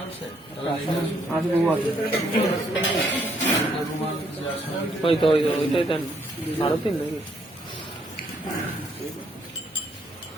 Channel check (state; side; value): normal; both; correlation 0.71